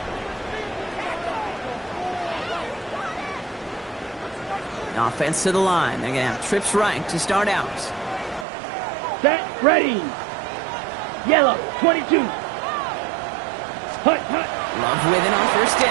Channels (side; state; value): left; drops out; at 8.5 s